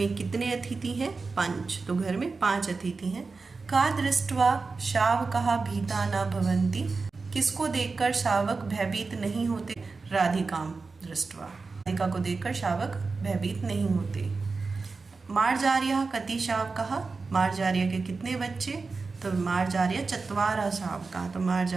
कितने अतिथि हैं? 5, तो घर में 5 अतिथि हैं। का दृष्ट्वा शावकाः भीता न भवन्ति, किसको देखकर शावक भयभीत नहीं होते? राधिकां दृष्ट्वा, राधिका को देखकर शावक भयभीत नहीं होते। मार्जार्यः कति शावकाः, मार्जार्य के कितने बच्चे? तो मार्जार्य चत्वारः शावकाः, तो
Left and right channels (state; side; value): quieter; left; 4.2 dB